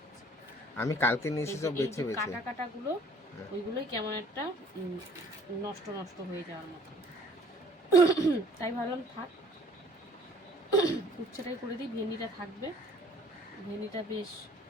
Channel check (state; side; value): normal; both; correlation 0.55